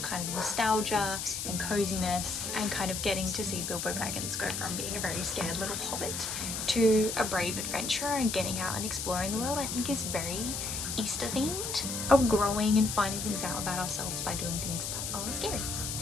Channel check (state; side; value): noise; left; hiss, 3 dB below the sound